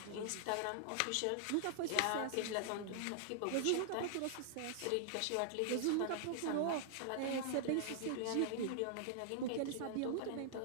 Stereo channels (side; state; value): both; different; correlation -0.01